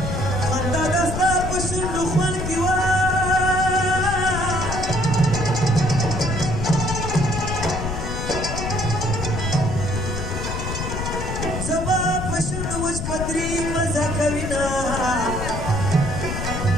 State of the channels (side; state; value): left; noise; rumble, 4 dB below the sound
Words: خندا د ستا په شونډو خوند کې وه زه به په شونډو وچ پتري مزه کوینه